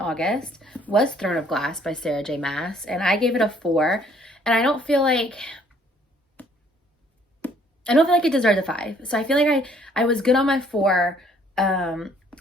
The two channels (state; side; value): normal; both; correlation 0.61